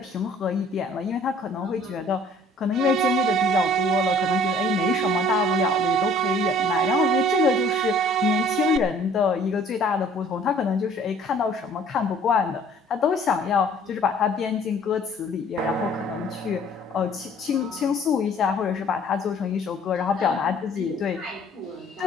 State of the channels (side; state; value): both; normal; correlation 0.55